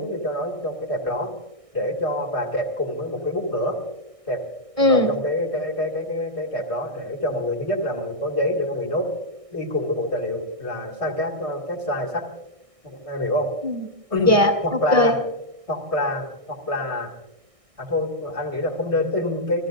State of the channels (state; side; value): late; left; 1.6 ms